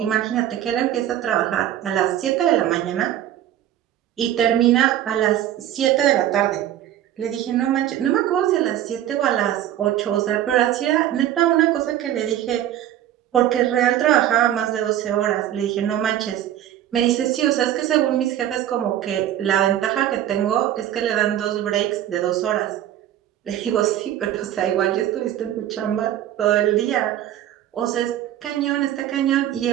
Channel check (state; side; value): quieter; left; 11.9 dB